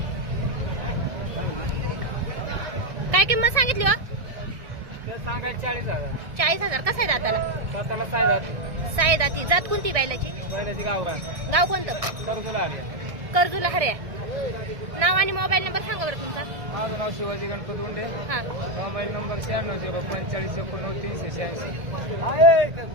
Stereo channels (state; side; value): late; left; 1.7 ms